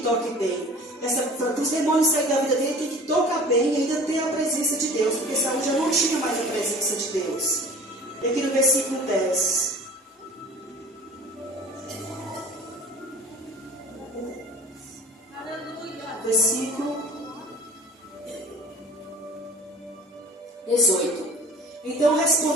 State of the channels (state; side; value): normal; both; correlation 0.44